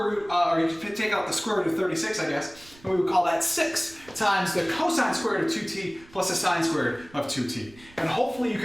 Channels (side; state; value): right; noise; rumble, 23 dB below the sound